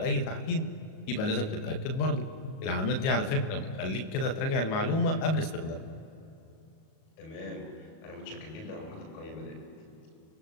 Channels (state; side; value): late; right; 37 ms